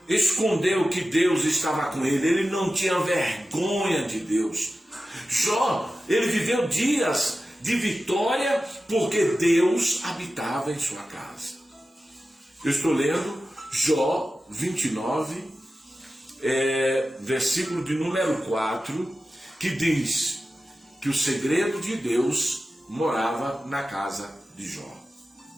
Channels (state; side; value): normal; both; correlation 0.94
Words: escondeu que Deus estava com ele. Ele não tinha vergonha de Deus. Jó, ele viveu dias de vitória porque Deus habitava em sua casa. Eu estou lendo Jó 29, versículo de número 4, que diz que o segredo de Deus morava na casa de Jó.